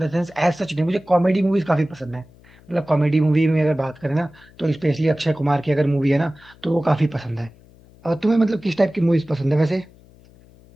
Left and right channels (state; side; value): noise; left; hum, 26 dB below the sound